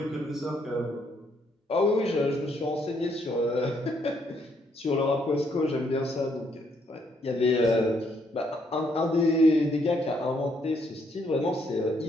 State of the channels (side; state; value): both; normal; correlation 0.72